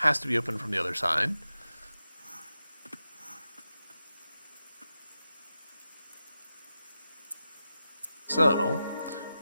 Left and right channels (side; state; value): both; inverted; correlation -0.90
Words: to be open from the other side. So,